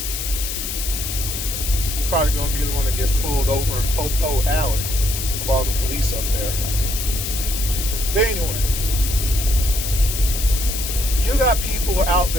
He's probably going to be the one that gets pulled over in Popo Alley with all the police up there. But anyway. You got people out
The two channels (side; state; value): left; noise; hiss, 4 dB below the sound